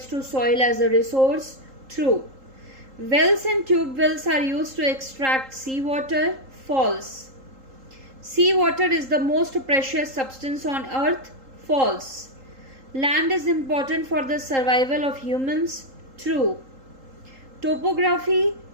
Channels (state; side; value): late; left; 3.8 ms